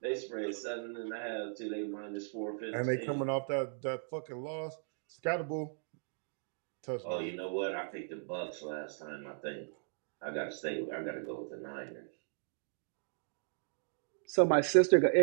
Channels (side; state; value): left; silent; digital silence